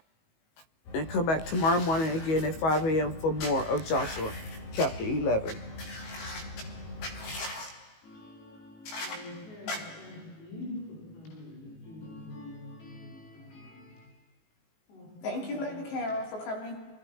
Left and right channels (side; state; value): right; late; 19 ms